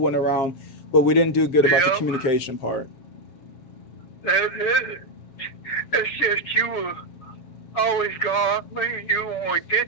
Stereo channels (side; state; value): right; late; 7.1 ms